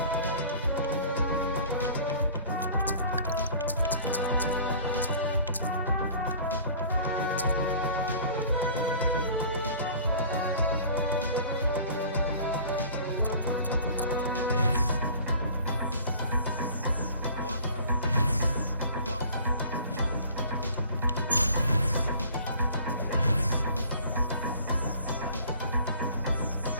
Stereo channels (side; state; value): both; inverted; correlation -0.47